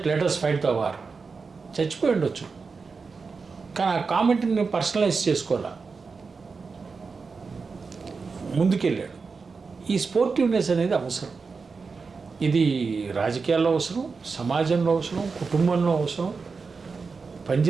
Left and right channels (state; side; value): quieter; left; 4.8 dB